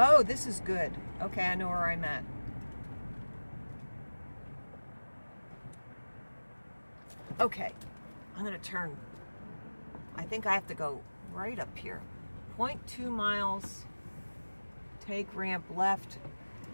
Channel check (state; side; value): inverted; both; correlation -1.00